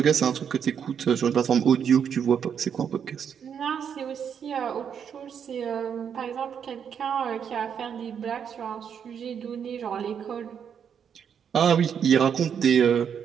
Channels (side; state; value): left; quieter; 7.8 dB